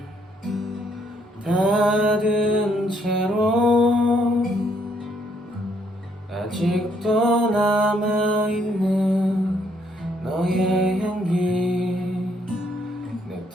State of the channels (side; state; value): both; normal; correlation 0.70